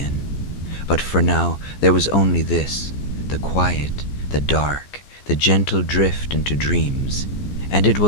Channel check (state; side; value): late; right; 14 ms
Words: But for now, there was only this, the quiet, the dark, the gentle drift into dreams. And it